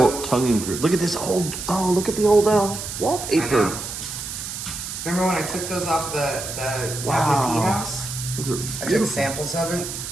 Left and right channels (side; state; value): right; noise; hiss, 7 dB below the sound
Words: whole tongue and groove. Look at this old. Oh, look at the old I wallpaper. know. Remember when I took those off the Wow. FFP house? Those are I took beautiful. samples of it.